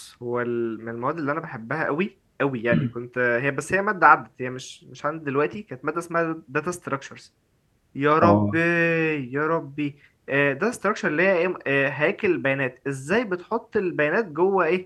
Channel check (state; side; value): identical; both; correlation 1.00